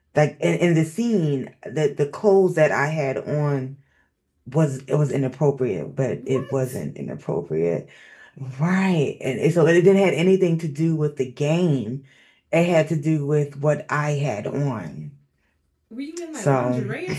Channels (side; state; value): both; identical; correlation 1.00